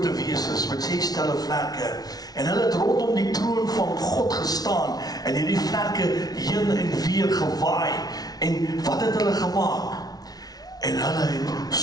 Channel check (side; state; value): right; late; 0.19 ms